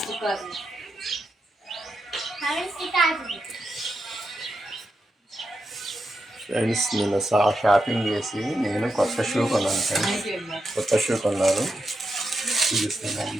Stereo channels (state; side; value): normal; both; correlation 0.86